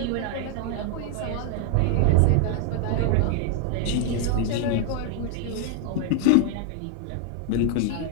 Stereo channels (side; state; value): both; different; correlation 0.00